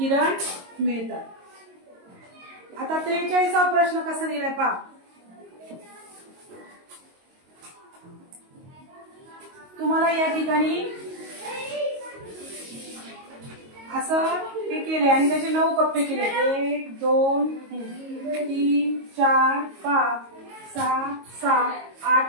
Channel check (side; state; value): left; late; 22 ms